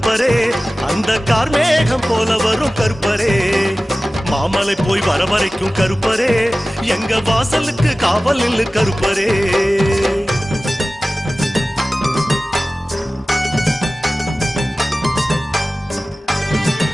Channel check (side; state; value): both; normal; correlation 0.97